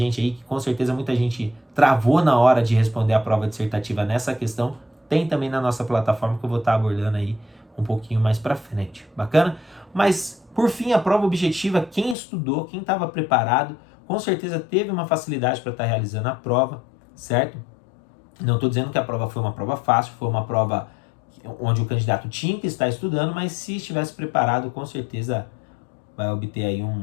aí, que com certeza muita gente travou na hora de responder a prova dissertativa nessa questão, tem também na nossa plataforma que eu vou estar abordando aí um pouquinho mais para frente. Bacana? Mas, por fim, a prova objetiva, quem estudou, quem estava preparado, com certeza teve uma facilidade para estar realizando a prova, certo? Não estou dizendo que a prova foi uma prova fácil, foi uma prova onde o candidato tinha que estar estudando, mas se estivesse preparado, com certeza vai obter aí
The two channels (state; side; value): drops out; right; at 12.2 s